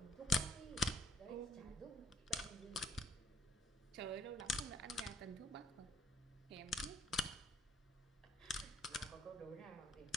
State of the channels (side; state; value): both; normal; correlation 0.64